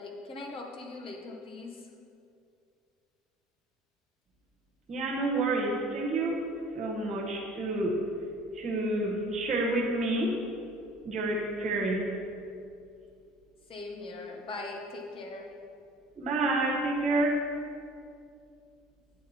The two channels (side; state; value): both; normal; correlation 0.48